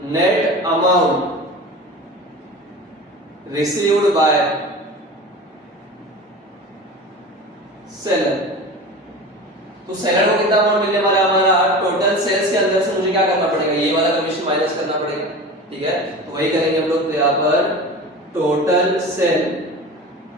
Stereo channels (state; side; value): normal; both; correlation 0.33